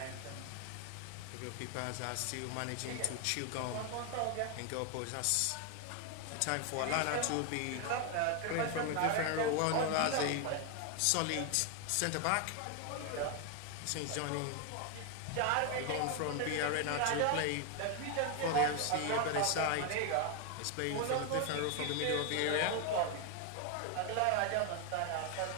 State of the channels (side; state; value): both; different; correlation 0.01